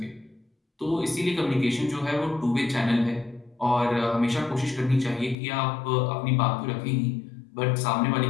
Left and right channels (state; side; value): drops out; right; at 5.4 s